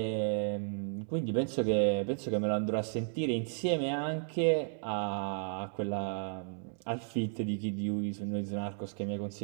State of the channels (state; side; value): silent; left; 55 dB below the other